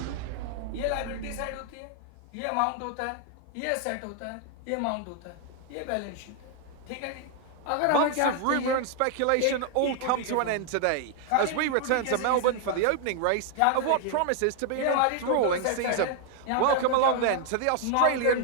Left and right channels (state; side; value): different; both; correlation 0.00